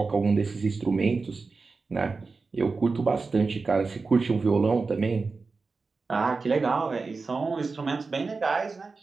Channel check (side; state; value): left; quieter; 4.2 dB